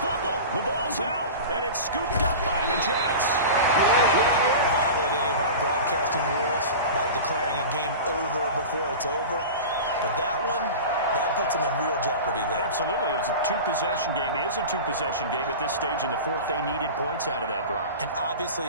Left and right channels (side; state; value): both; inverted; correlation -0.31